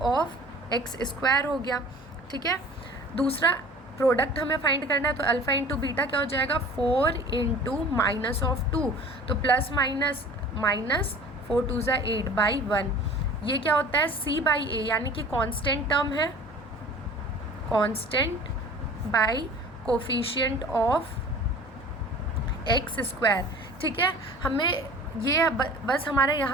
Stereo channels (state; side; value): normal; both; correlation 0.44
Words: x² हो गया। ठीक है, दूसरा प्रोडक्ट हमें फाइंड करना है, तो अल्फ़ा इंटू बीटा क्या हो जाएगा 4 इंटू माइनस ऑफ 2, तो प्लस माइनस माइनस 4 2 ज़ा 8 बाई 1। ये क्या होता है c बाई ए, यानी कि कांस्टेंट टर्म है, constant by coefficient of X square. ठीक है, हमें ये बस हमारा